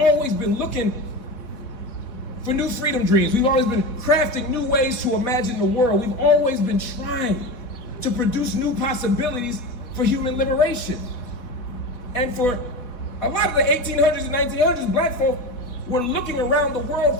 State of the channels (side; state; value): right; late; 4.1 ms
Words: been looking for new freedom dreams. We've always been crafting new ways to imagine the world. We've always been trying to produce new possibilities for human liberation. And for a lot of the 1800s and 1900s, black folk were looking around the world